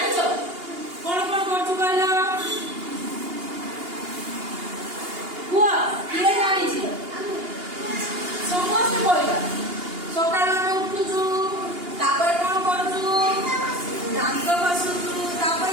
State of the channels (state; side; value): late; left; 2.8 ms